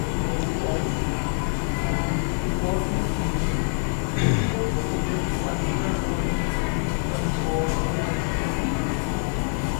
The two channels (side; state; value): right; silent; 62 dB below the other